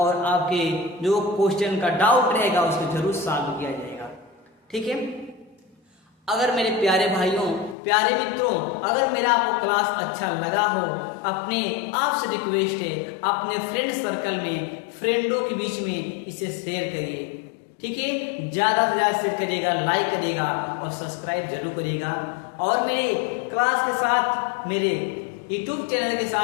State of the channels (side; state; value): right; drops out; at 7.8 s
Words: आपके जो क्वेश्चन का डाउट रहेगा उसको जरूर सॉल्व किया जाएगा, ठीक है। अगर मेरे प्यारे भाइयों, प्यारे मित्रों, अगर मेरा आपको क्लास अच्छा लगा हो, अपने आपसे रिक्वेस्ट है, अपने फ्रेंड सर्कल में, फ्रेंडों के बीच में इसे शेयर करिए, ठीक है। ज्यादा से ज्यादा शेयर करिएगा, लाइक करिएगा और सब्सक्राइब जरूर करिएगा। और मेरे क्लास के साथ, मेरे यूट्यूब चैनल के